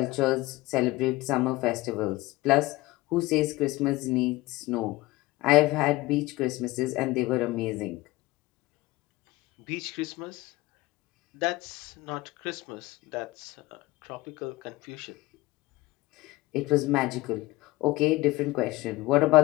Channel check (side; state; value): right; quieter; 19.8 dB